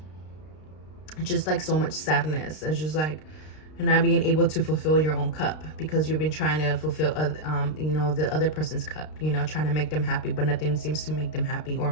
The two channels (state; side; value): late; right; 32 ms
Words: Just like so much sadness. It's just like not being able to fulfill your own cup, because you've been trying to fulfill you know, the other person's cup, you know, trying to make them happy, but nothing seems to make them happy or